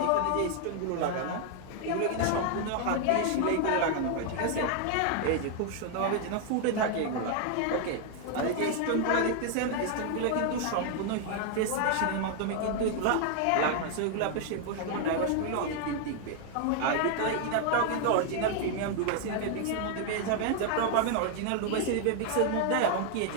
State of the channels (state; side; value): different; both; correlation 0.00